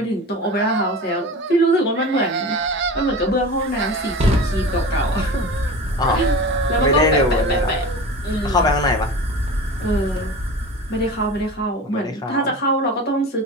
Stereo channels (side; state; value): both; normal; correlation 0.33